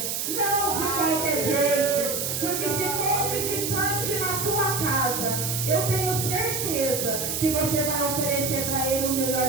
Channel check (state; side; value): noise; right; hiss, 2 dB below the sound